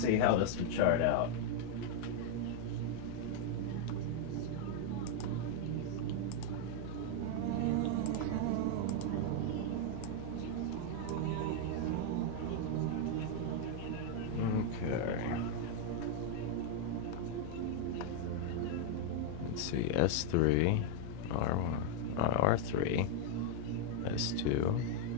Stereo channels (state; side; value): different; both; correlation 0.00